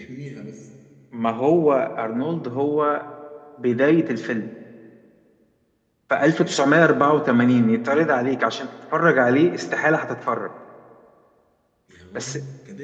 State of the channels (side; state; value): both; identical; correlation 1.00